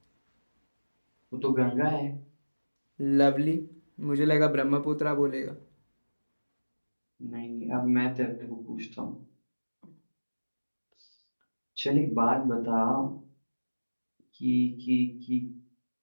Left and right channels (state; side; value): inverted; both; correlation -1.00